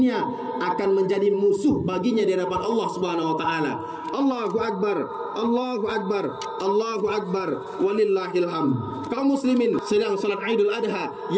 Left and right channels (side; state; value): both; identical; correlation 1.00